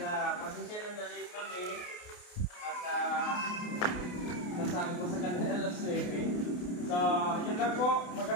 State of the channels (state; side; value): late; right; 28 ms